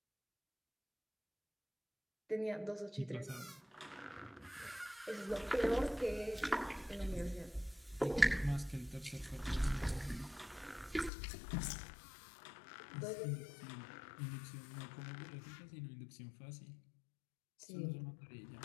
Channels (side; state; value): right; drops out; at 11.1 s